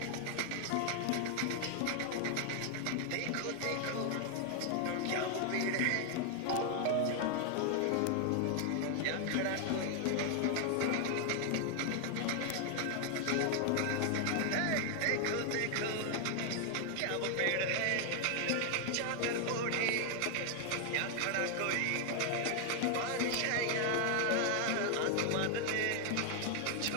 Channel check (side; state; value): both; different; correlation 0.00